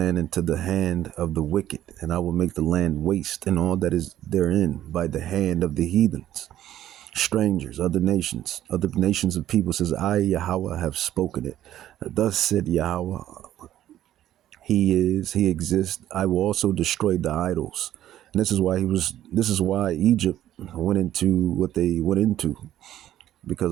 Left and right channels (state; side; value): quieter; left; 12.5 dB